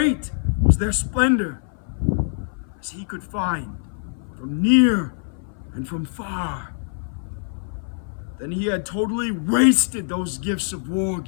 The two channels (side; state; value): right; silent; 58 dB below the other